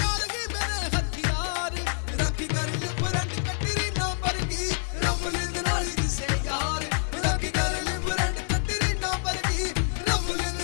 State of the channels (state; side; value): silent; right; 57 dB below the other